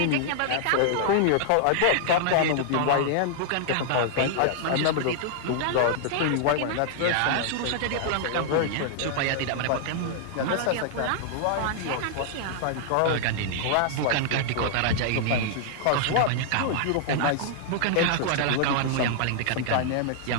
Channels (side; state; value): both; different; correlation -0.01